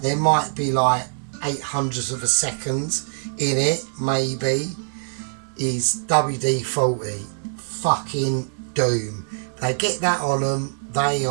there might be like 800ths of a second in it, maybe. Is WD-40. Fucking doom. They get that on them, they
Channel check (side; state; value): left; silent; digital silence